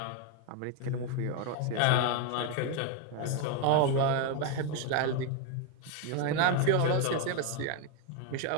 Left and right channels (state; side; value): different; both; correlation 0.01